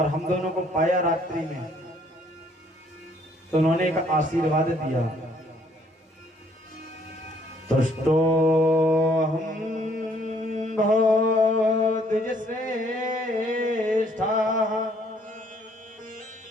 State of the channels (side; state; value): both; normal; correlation 0.64